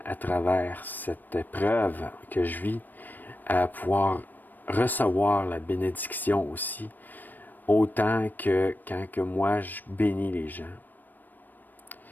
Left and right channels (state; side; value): late; right; 0.089 ms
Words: à travers cette épreuve que je vis à pouvoir recevoir la bénédiction aussi, autant que quand que moi je bénis les gens.